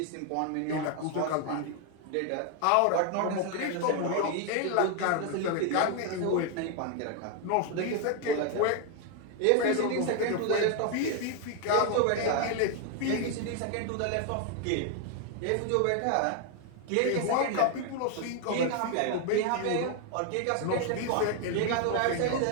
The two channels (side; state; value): both; different; correlation 0.00